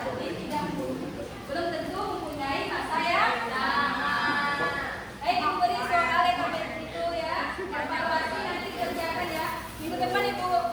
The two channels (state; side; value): identical; both; correlation 1.00